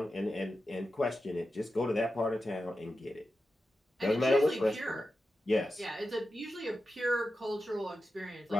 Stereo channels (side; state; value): both; normal; correlation 0.90